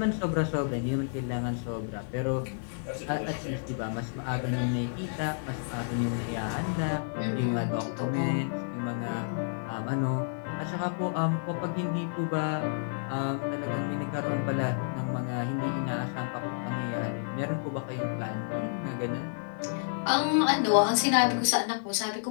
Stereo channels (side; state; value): right; silent; 58 dB below the other